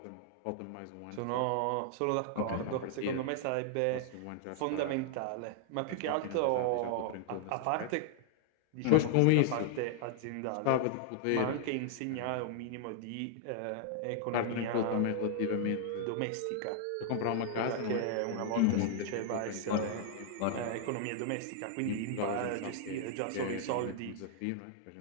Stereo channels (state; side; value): different; both; correlation 0.00